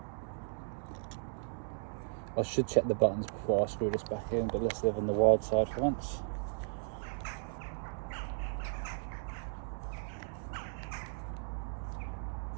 I should check the buttons before I screw this back in, but let's live on the wild side for once.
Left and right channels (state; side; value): silent; left; digital silence